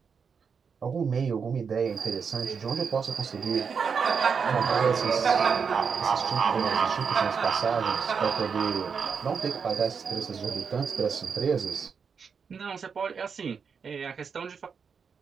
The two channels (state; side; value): quieter; left; 6.1 dB